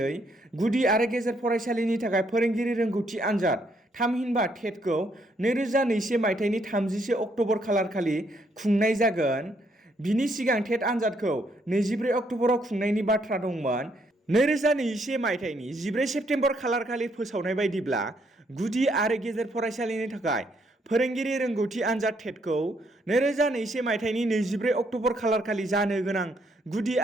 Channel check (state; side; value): normal; both; correlation 0.72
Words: गुदि आरो गेजेर फरायसालिनि थाखाय फोरोंगिरि रोंगौथि आनजाद थामहिनबा टेटखौ 2021 मायथाइनि 31 अक्ट'बर खालारखालि खुंनाय जागोन। बिनि सिगां टेट आनजादखौ 24 अक्ट'बराव खुंनायनि बाथ्रा दंमोन। 2021 मायथाइनि 14 सेप्तेम्बर खालारखालि फोसावनाय बायदिब्ला गुदि आरो गेजेर फरायसालिनि थाखाय फोरोंगिरि रोंगौथि आनजाद टेटखौ 2021 मायथाइनि 24 अक्ट'बर खालारखालि जानो गोनां गुदि